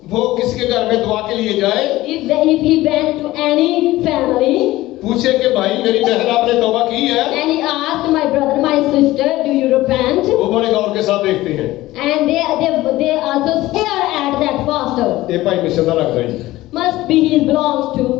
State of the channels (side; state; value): right; quieter; 17.2 dB